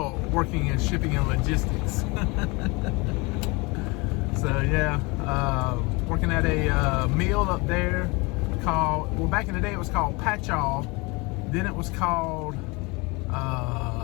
working in shipping and logistics. So yeah, working at a mill up there called, well, back in the day it was called Patchall. Then it was called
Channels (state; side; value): quieter; right; 26.5 dB